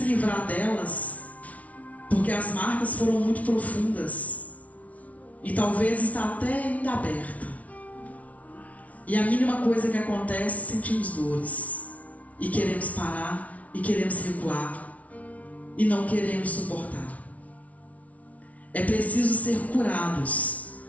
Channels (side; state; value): right; late; 0.068 ms